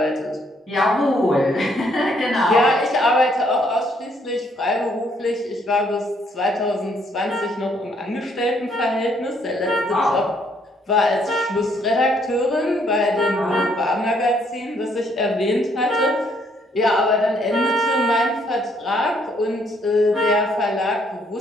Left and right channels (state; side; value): normal; both; correlation 0.68